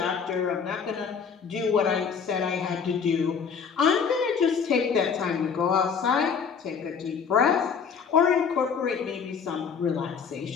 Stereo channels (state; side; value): quieter; right; 6.3 dB